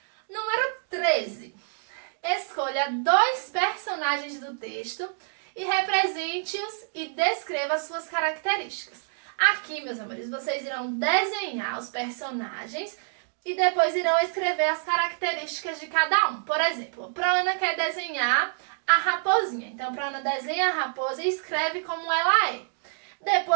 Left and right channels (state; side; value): silent; left; digital silence